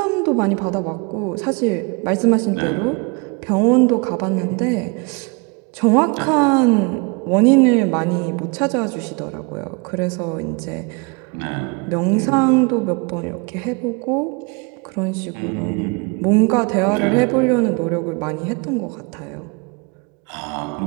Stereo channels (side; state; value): left; quieter; 30.9 dB